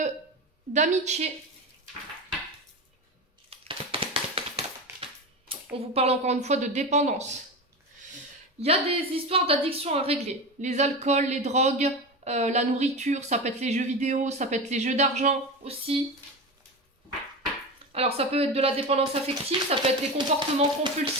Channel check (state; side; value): normal; both; correlation 0.23